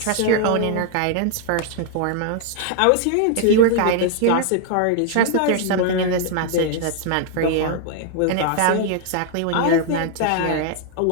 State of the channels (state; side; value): different; both; correlation 0.00